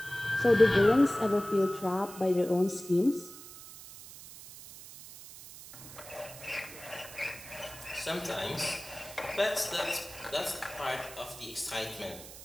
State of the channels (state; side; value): noise; right; hiss, 15 dB below the sound